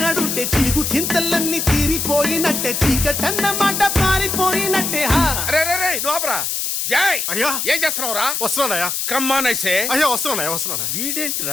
చీగు చింతలన్నీ తీరిపోయినట్టే చీకటన్నమాట పారిపోయినట్టే. జై అయ్యా ఏం చేస్తున్నావురా? వస్తున్నానయ్యా. కమ్మానైసే అయ్యా వస్తున్నా.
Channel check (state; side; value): noise; left; hiss, 1 dB below the sound